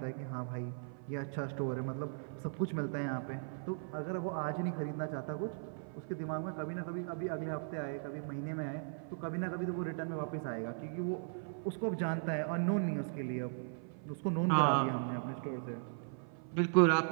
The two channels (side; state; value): left; silent; 53 dB below the other